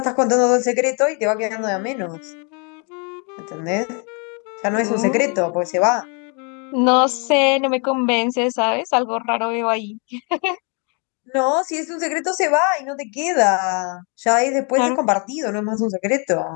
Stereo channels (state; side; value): quieter; right; 36.7 dB